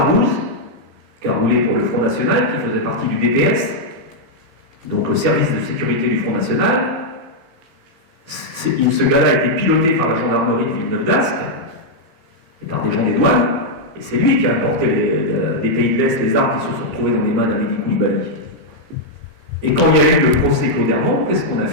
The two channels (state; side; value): late; left; 15 ms